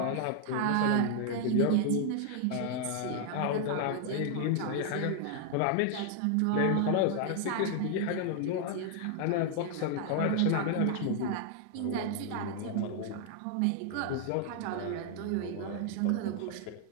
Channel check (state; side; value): different; both; correlation 0.00